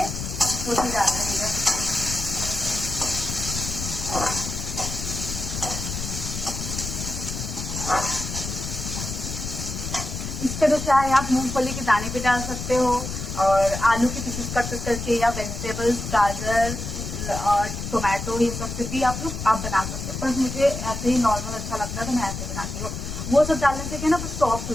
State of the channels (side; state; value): left; noise; rumble, 6 dB below the sound